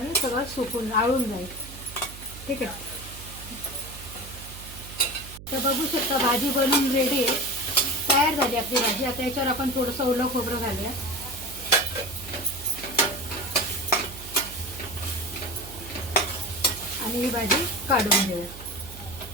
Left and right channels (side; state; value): right; noise; hum, 15 dB below the sound